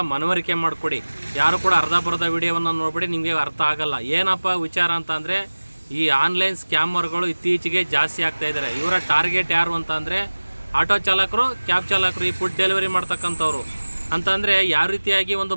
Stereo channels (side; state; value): both; inverted; correlation -1.00